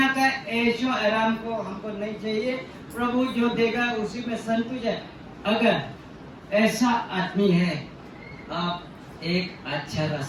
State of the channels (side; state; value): both; identical; correlation 1.00